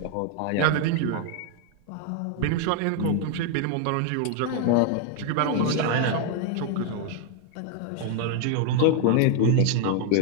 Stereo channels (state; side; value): different; both; correlation 0.01